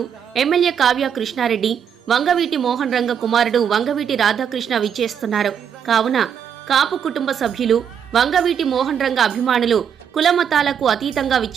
ఎమ్మెల్యే కావ్య కృష్ణారెడ్డి, వంగవీటి మోహన్ రంగ కుమారుడు వంగవీటి రాధాకృష్ణ విచ్చేస్తున్నారు. కావున కాపు కుటుంబ సభ్యులు, వంగవీటి మోహన్ రంగ అభిమానులు కులమతాలకు అతీతంగా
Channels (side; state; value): left; quieter; 8.0 dB